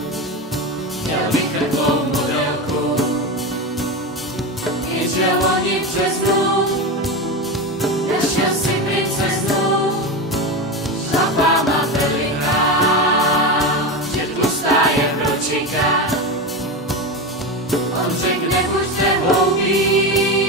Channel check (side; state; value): both; normal; correlation 0.19